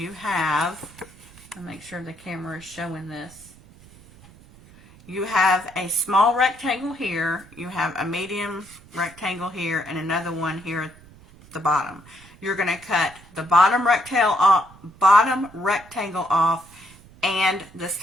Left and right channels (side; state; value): right; noise; rumble, 23 dB below the sound